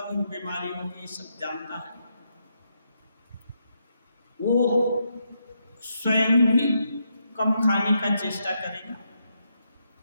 बीमारी होगी, ये सब जानता है, वो स्वयं भी कम खाने का चेष्टा करेगा,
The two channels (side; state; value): both; inverted; correlation -0.80